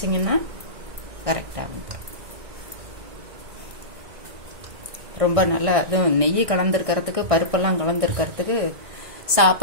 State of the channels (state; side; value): late; left; 1.6 ms